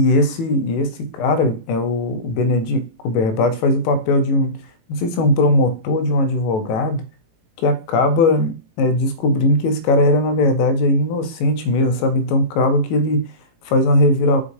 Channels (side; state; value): right; late; 18 ms